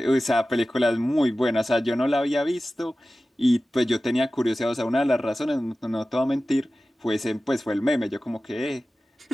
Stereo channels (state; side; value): normal; both; correlation 0.95